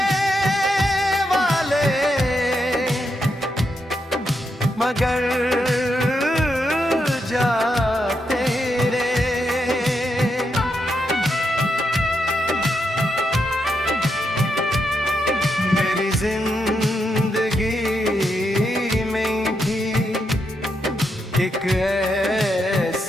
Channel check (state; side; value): normal; both; correlation 0.82